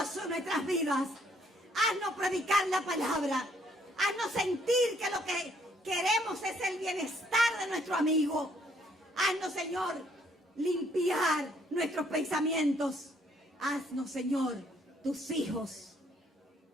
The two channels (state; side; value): normal; both; correlation 0.67